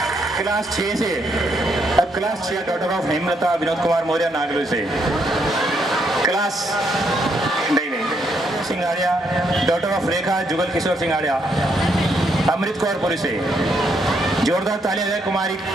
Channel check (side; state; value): both; normal; correlation 0.75